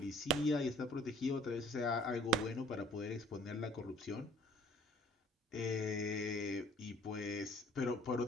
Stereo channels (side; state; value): both; normal; correlation 0.56